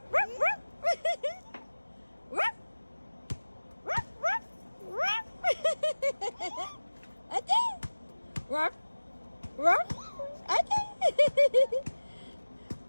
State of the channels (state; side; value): inverted; both; correlation -1.00